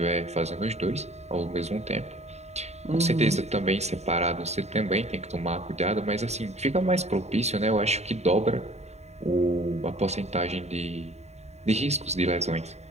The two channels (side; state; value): left; late; 0.32 ms